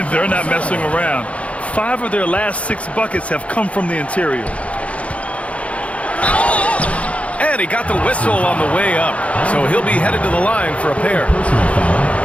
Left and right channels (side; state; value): right; late; 0.064 ms